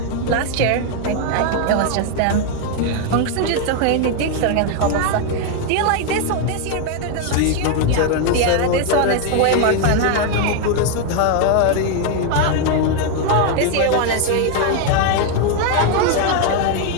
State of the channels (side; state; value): both; different; correlation 0.01